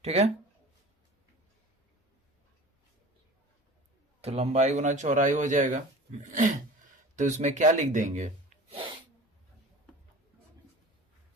ठीक है, तो लंबाई गुना चौड़ाई हो जाएगा। तो इसमें क्या लिख देंगे?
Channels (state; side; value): normal; both; correlation 0.40